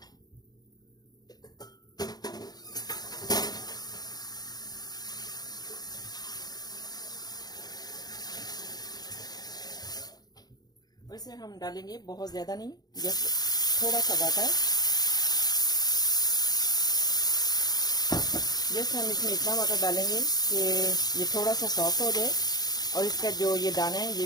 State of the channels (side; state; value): right; late; 0.19 ms